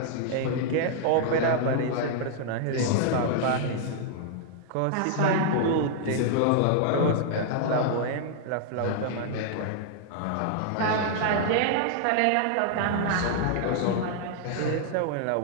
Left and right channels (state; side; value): different; both; correlation -0.01